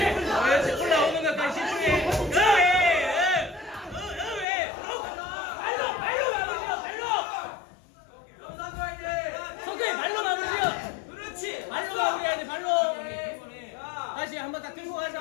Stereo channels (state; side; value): drops out; right; at 4.5 s